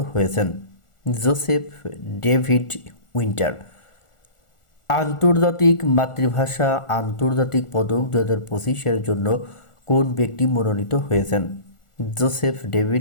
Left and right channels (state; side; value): late; right; 1.4 ms